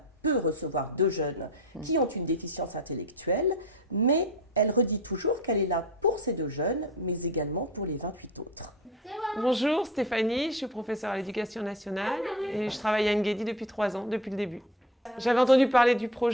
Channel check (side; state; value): both; normal; correlation 0.34